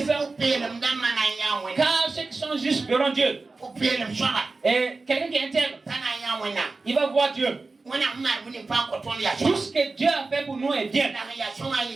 Car ceux qui sont justes verront Dieu. Et quelqu'un qui est intègre, il va voir Dieu. Tout ce que Dieu a fait pour nous est bien.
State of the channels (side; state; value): left; quieter; 3.7 dB